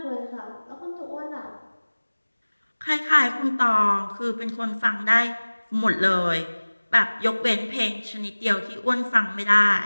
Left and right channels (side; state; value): both; inverted; correlation -1.00